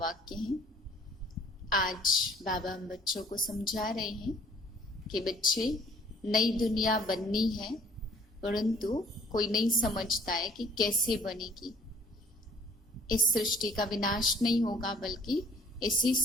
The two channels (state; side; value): normal; both; correlation 0.56